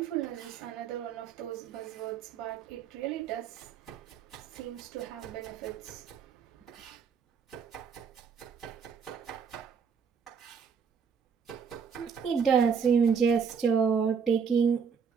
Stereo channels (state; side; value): quieter; left; 6.5 dB